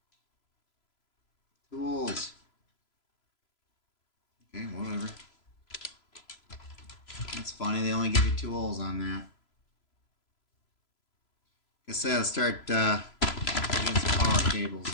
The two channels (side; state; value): right; late; 3.0 ms